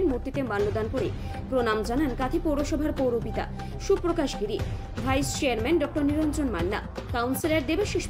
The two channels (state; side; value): identical; both; correlation 1.00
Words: মূর্তিতে মাল্যদান করে প্রণাম জানান কাঁথি পৌরসভার পৌরপিতা সুপ্রকাশ গিরি, ভাইস চেয়ারম্যান ডক্টর নিরঞ্জন মান্না, কাউন্সিলর দেবাশিস